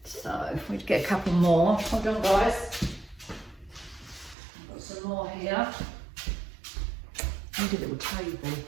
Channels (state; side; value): drops out; left; at 4.4 s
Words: So if we get a couple more, hold on guys. I've got some more here. I need a little table.